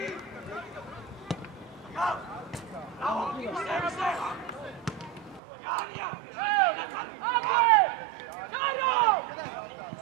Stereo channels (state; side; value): drops out; left; at 5.4 s